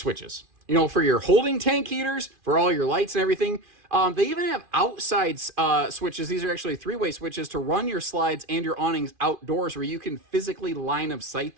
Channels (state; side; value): late; left; 2.5 ms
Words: You know, for your holding tank heaters, for all your lights and everything. They even have outside switches. These are actually three-way switches to run your slides and your awnings outdoors where you can physically line of sight